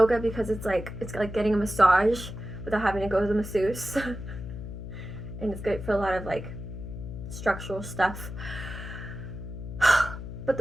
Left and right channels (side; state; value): left; noise; hum, 9 dB below the sound